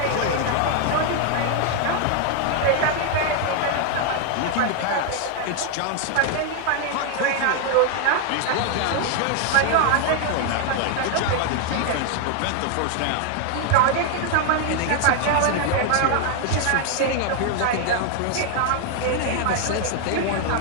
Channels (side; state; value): both; different; correlation 0.00